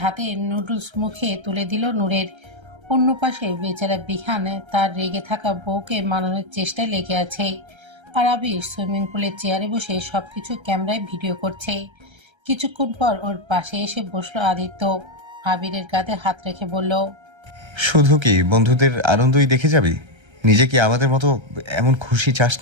হাতে নুডলস মুখে তুলে দিল নূরের। অন্য পাশে বেচারা বিহান তার রেগে থাকা বউকে মানানোর চেষ্টায় লেগে আছে। আর আবির সুইমিং পুলের চেয়ারে বসে সবকিছু ক্যামেরায় ভিডিও করছে। কিছুক্ষণ পর ওর পাশে এসে বসলো আদিত্য। আবিরের কাঁধে হাত রেখে বলল, শুধু কি বন্ধুদের আনন্দই দেখে যাবি? নিজে কি আমাদের মতো এমন খুশি চাস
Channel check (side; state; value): left; late; 1.3 ms